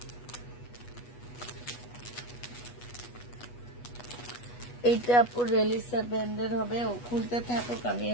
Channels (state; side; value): late; right; 8.2 ms